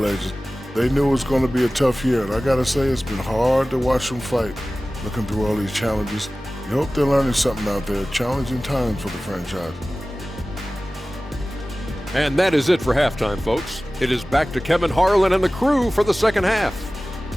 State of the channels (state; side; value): normal; both; correlation 0.97